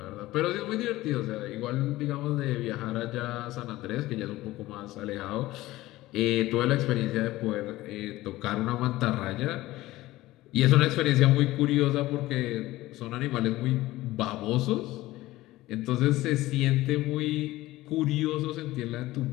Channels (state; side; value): quieter; right; 17.4 dB